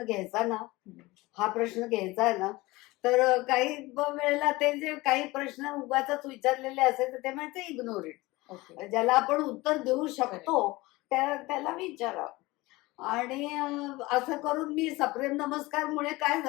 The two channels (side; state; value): right; quieter; 20.9 dB